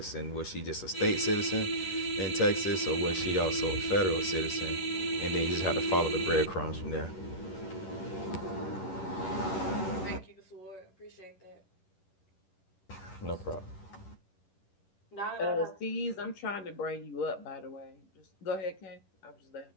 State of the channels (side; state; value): right; late; 11 ms